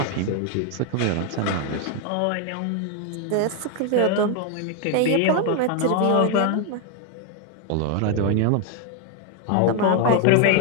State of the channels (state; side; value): different; both; correlation 0.01